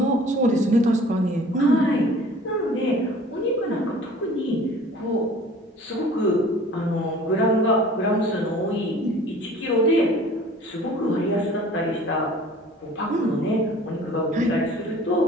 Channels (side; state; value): both; normal; correlation 0.48